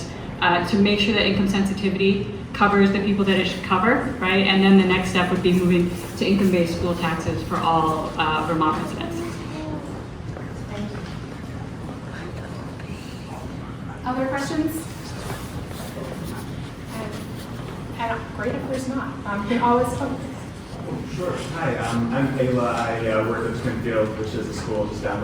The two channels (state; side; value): identical; both; correlation 1.00